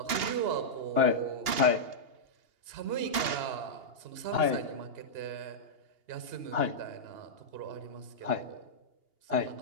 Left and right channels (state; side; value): late; left; 2.8 ms